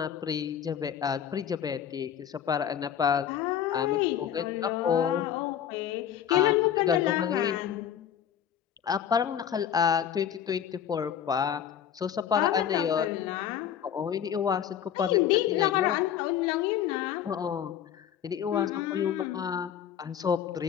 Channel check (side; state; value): right; quieter; 9.3 dB